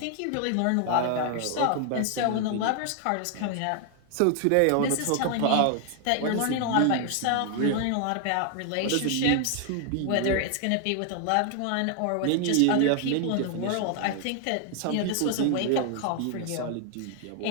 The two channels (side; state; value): both; different; correlation 0.00